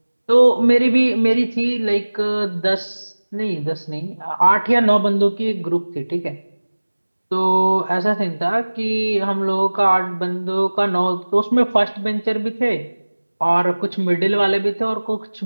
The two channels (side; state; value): both; inverted; correlation -1.00